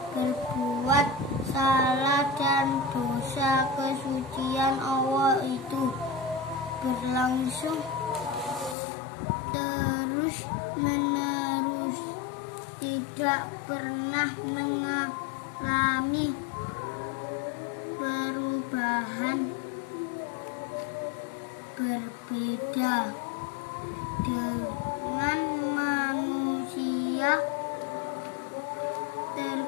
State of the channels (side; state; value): right; drops out; at 8.8 s